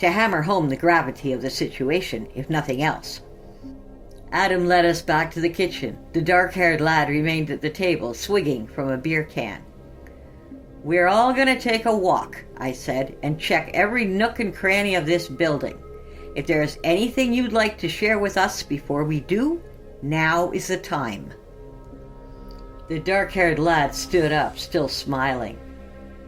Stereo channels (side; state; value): both; identical; correlation 1.00